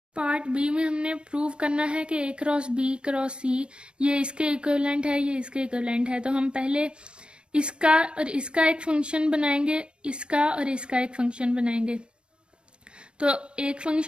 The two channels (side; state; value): left; late; 0.056 ms